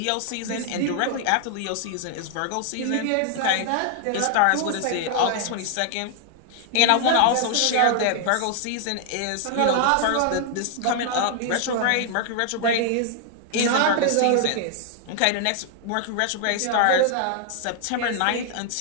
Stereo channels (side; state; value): both; different; correlation 0.00